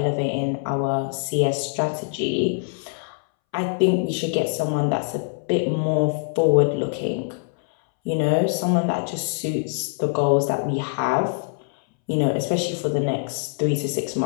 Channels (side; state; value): right; silent; 63 dB below the other